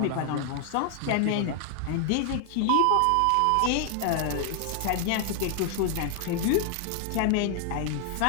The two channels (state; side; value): different; both; correlation 0.00